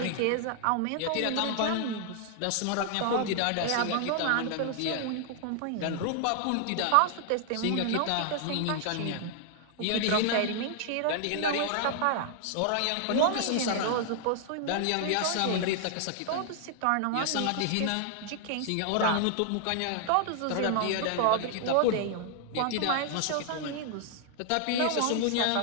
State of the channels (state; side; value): different; both; correlation 0.00